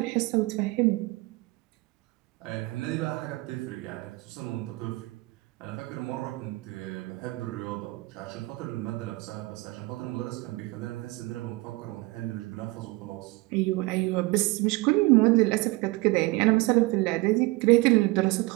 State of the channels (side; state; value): left; quieter; 22.4 dB